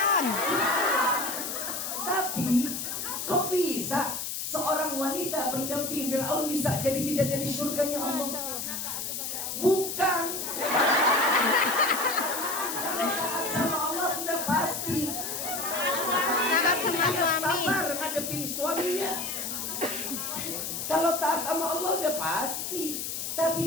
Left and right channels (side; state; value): left; noise; hiss, 4 dB below the sound